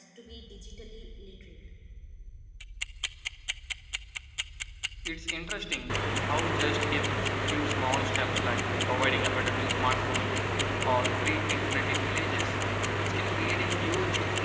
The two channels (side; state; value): both; identical; correlation 1.00